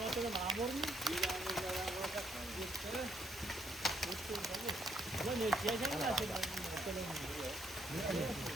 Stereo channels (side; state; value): both; normal; correlation 0.72